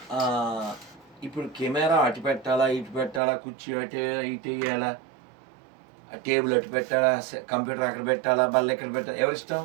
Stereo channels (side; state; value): left; drops out; at 3.2 s